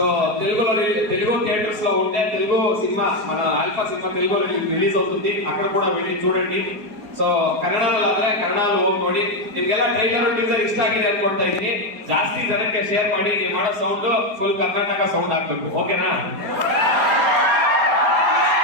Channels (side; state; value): left; late; 4.6 ms